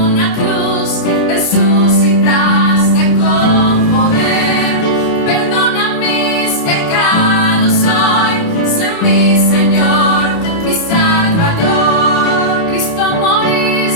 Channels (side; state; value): right; late; 29 ms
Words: cruz, resucitaste con poder. Perdona mis pecados hoy, sé mi Señor, mi Salvador. Cristo,